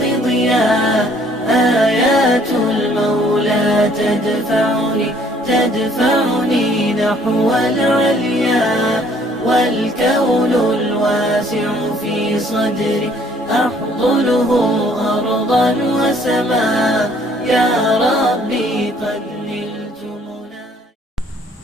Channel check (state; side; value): normal; both; correlation 0.60